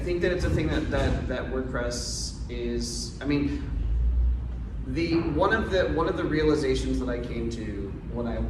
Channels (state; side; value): identical; both; correlation 1.00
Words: that it's a thing that WordPress is, I mean, one of the realizations that I came to when I